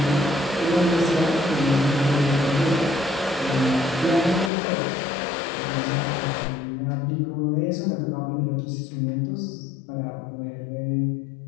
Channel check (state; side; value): drops out; right; at 4.5 s